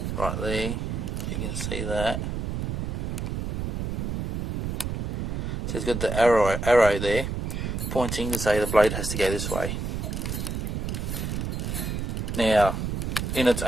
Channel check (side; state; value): right; noise; rumble, 3 dB below the sound